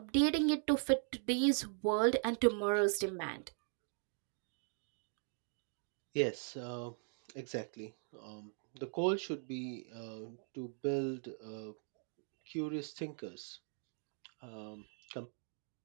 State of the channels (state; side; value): silent; left; 51 dB below the other